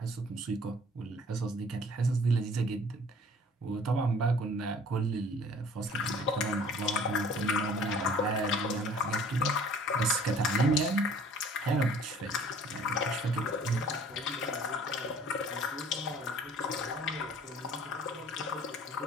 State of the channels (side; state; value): both; normal; correlation 0.52